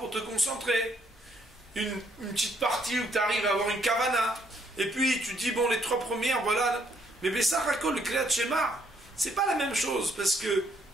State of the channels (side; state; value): both; normal; correlation 0.69